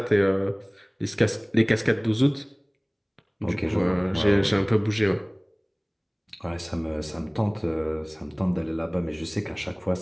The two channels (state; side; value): identical; both; correlation 1.00